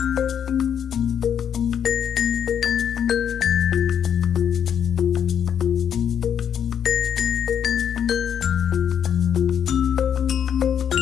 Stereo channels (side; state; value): right; quieter; 8.6 dB